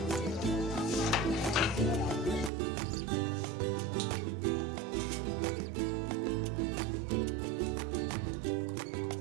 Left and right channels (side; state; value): left; drops out; at 2.5 s